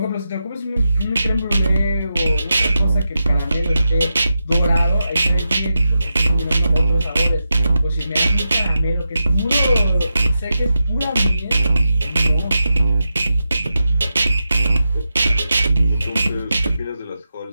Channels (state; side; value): inverted; both; correlation -0.89